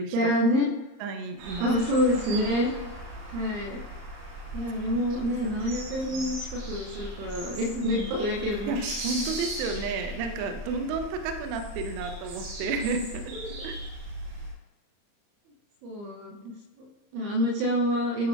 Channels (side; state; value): left; late; 35 ms